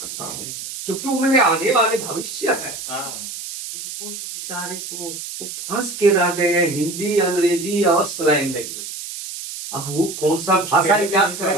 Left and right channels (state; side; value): noise; right; hiss, 9 dB below the sound